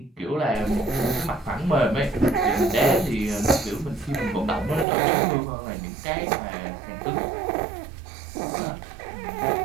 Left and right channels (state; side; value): drops out; left; at 4.9 s